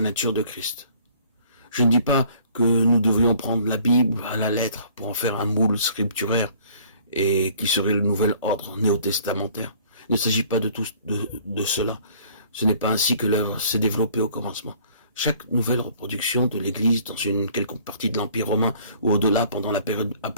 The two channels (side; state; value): both; inverted; correlation -0.55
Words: nature de Christ. Je ne dis pas que nous devrions prendre la Bible à la lettre pour en faire un moule scripturaire et qui serait le nouvel ordre néo-testamentaire. Il ne s'agit pas de cela. Ce n'est pas ainsi que l'œuvre s'est développée au commencement. Chaque nouvelle reproduction de l'Église dans une quelconque partie de l'Empire romain ou au-delà pendant la période